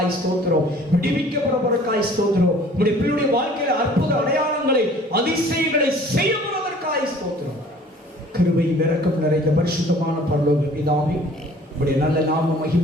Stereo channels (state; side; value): normal; both; correlation 0.51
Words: ஸ்தோத்திரம், விடுவிக்கப்படுவதற்காய் ஸ்தோத்திரம், உங்களுடைய பிள்ளையுடைய வாழ்க்கையில அற்புத அடையாளங்களை அதிசயங்களை செய்யப்படுவதற்காய் ஸ்தோத்திரம். கிருபை இரக்கம் நிறைந்த பரிசுத்தமான பரலோக பிதாவே, உங்களுடைய நல்ல நாமம்